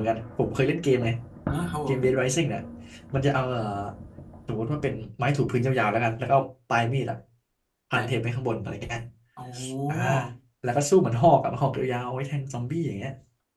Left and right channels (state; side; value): identical; both; correlation 1.00